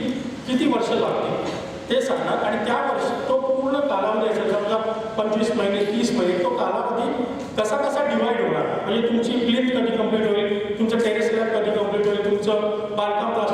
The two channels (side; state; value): both; identical; correlation 1.00